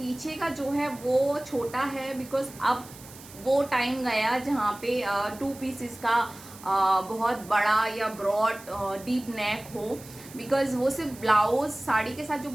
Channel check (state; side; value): noise; right; hiss, 19 dB below the sound